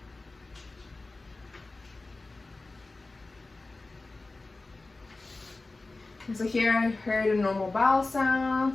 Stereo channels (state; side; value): quieter; right; 3.3 dB